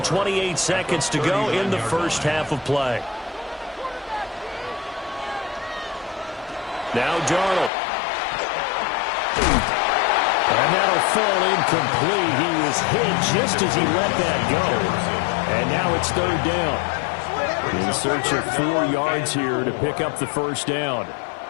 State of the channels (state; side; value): drops out; right; at 7.7 s